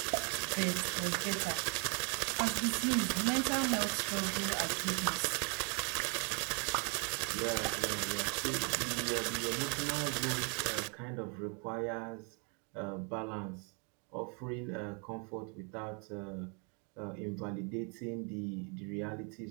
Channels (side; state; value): left; quieter; 36.3 dB